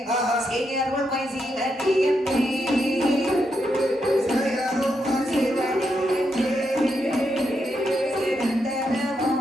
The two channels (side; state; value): both; normal; correlation 0.82